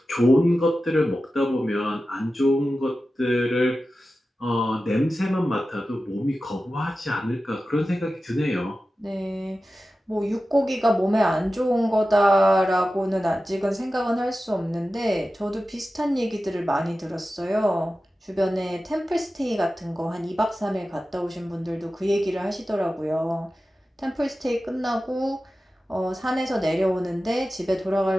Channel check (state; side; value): normal; both; correlation 0.94